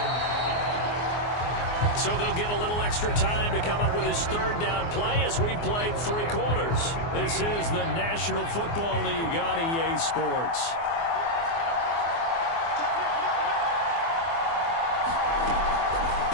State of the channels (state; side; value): late; right; 24 ms